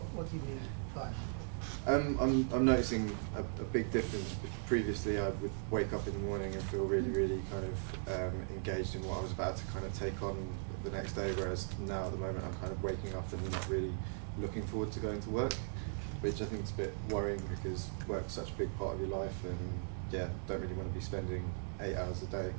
do you mean by that? I'm noticing a big difference. Previously, I would wake up in the morning and feel really kind of engaged in what I was about to kind of take on the next day, whereas now at the moment I'm kind of waking up and not really looking forward to going to work, which I think is a bit worrying because work's such a big part of your life, and yeah, don't really want to be spending 8 hours a day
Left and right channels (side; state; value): left; silent; digital silence